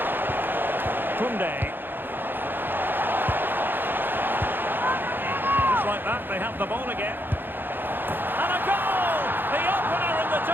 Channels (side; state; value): left; late; 0.096 ms